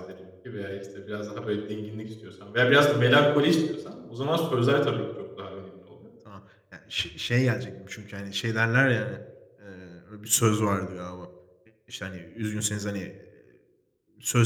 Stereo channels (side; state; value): both; identical; correlation 1.00